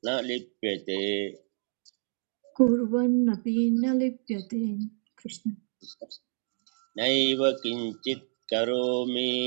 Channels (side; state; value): left; silent; digital silence